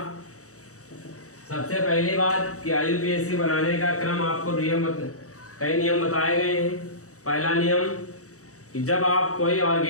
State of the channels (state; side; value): late; right; 0.65 ms